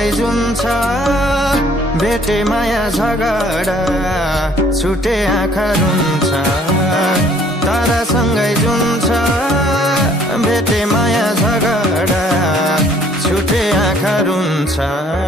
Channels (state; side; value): normal; both; correlation 0.59